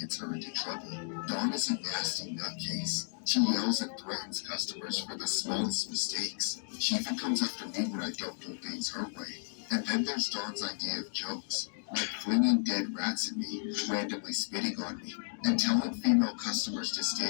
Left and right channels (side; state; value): right; silent; digital silence